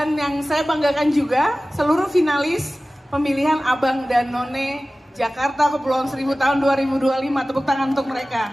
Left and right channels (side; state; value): both; normal; correlation 0.97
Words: yang saya banggakan juga seluruh finalis pemilihan Abang dan None Jakarta Kepulauan Seribu tahun 2025, tepuk tangan untuk